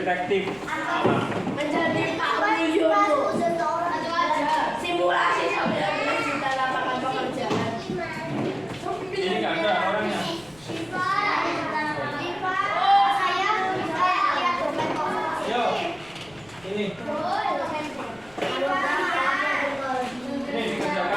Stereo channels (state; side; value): noise; left; rumble, 26 dB below the sound